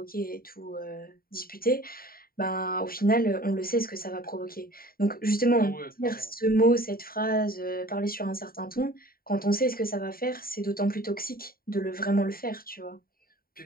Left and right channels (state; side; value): late; right; 0.43 ms